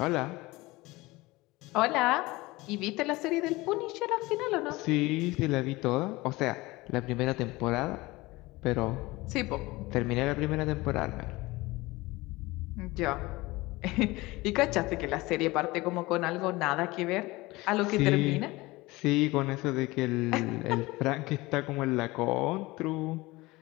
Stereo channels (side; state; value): right; quieter; 21.1 dB